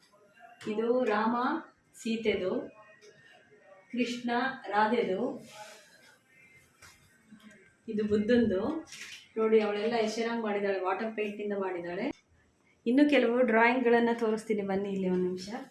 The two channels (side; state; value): both; identical; correlation 1.00